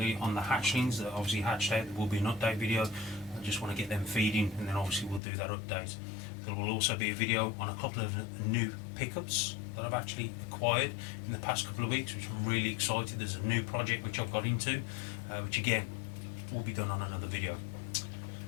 on the hatchlings that obviously hatched out. There will be an update video. I just want to get them feeding, and then obviously we'll do that update. There will also be a video on a couple of new pickups that I've actually acquired in the past couple of weeks, which I'm really excited. There's a new project which I've got into, which again will be done on another video.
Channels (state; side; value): drops out; right; at 5.2 s